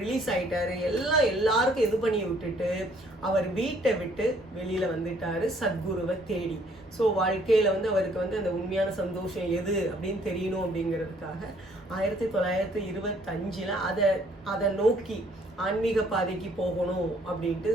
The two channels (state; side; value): normal; both; correlation 0.63